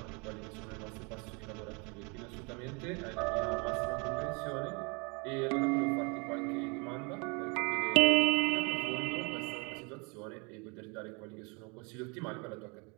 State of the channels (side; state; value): left; quieter; 31.3 dB